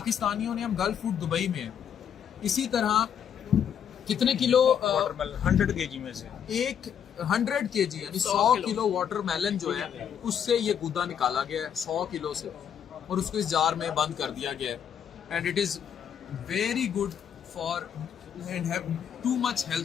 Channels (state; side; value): quieter; right; 8.5 dB